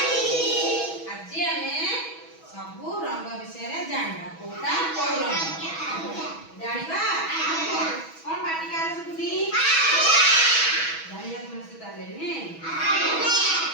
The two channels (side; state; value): right; late; 6.2 ms